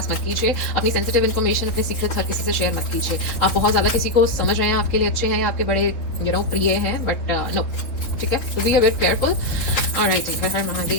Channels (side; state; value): right; late; 3.4 ms